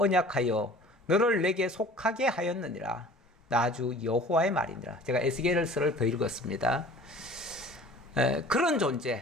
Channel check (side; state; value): both; normal; correlation 0.46